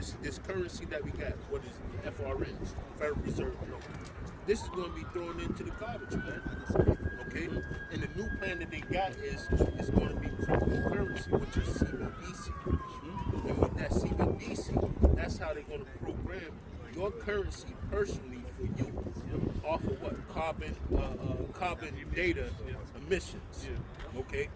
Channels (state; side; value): identical; both; correlation 1.00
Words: currency that we got, what is it? FRN, Federal Reserve Note. This is going to be thrown into the garbage, man. Okay? And the new plan that they got is it's going to be cryptocurrency, which is CBDC. And with that CBDC, that's how they're going to program your currency personally for you off of what? Carbon data emissions. Okay?